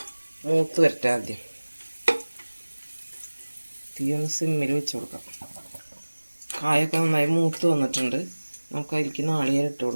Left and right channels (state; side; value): inverted; both; correlation -1.00